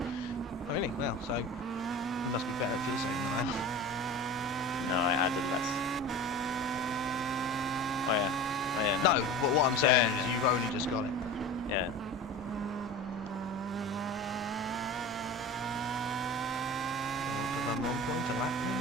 Oh really? Well, so you must be better at fuel saving than I am. No, I added less. Oh yeah. Oh yeah. No, but what I'm saying Yeah, is you've only just got it. Yeah. Van Rompuy to lap him.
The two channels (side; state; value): both; normal; correlation 0.34